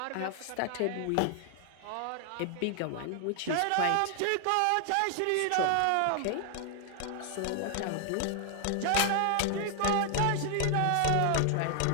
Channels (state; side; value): different; both; correlation 0.00